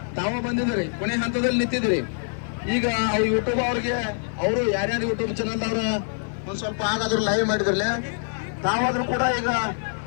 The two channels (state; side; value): silent; right; 62 dB below the other